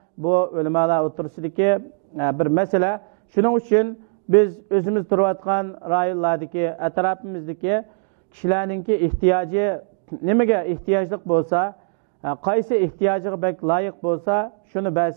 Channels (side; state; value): left; quieter; 40.0 dB